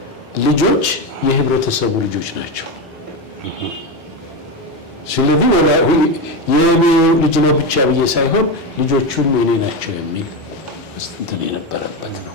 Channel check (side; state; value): both; normal; correlation 0.15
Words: ልጆች የህብረተሰቡ ልጆች ናቸው። ስለዚህ የኔ ልጅ ነው ብቻ ብዬ ሳይሆን ልጆቹም የኔ ናቸው የሚል እንትን የነበረበት ነው።